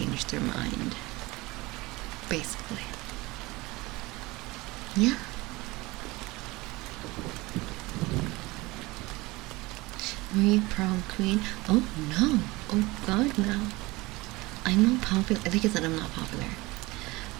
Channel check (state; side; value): quieter; left; 21.8 dB